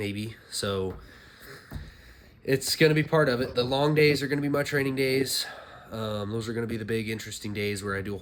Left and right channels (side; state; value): both; identical; correlation 1.00